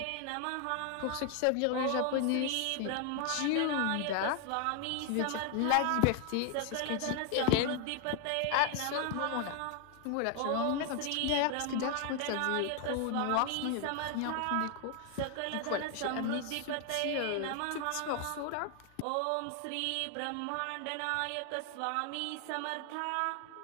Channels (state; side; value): different; both; correlation 0.00